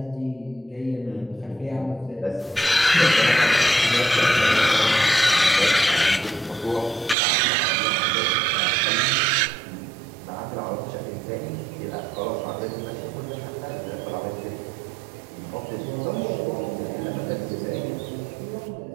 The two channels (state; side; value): drops out; left; at 7.2 s